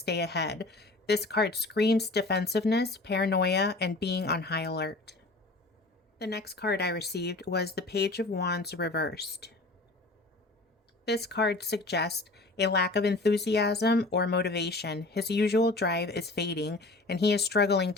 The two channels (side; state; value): right; quieter; 3.1 dB